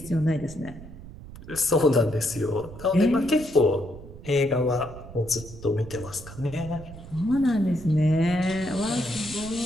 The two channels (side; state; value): right; noise; rumble, 15 dB below the sound